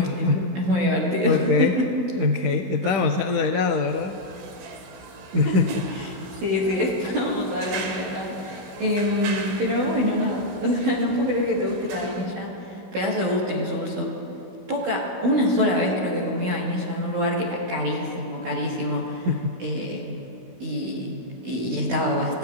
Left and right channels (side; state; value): left; late; 16 ms